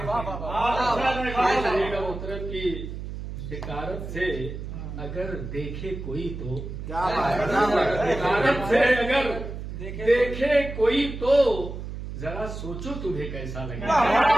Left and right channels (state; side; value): noise; right; hum, 8 dB below the sound